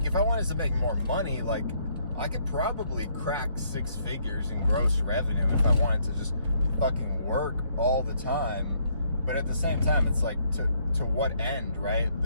if I wanted to make more money, like, I could probably crack 6 figures in gross revenue if I wanted to just fucking work all the time. But at the same time, it's like, to what end, right?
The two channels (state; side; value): inverted; both; correlation -0.69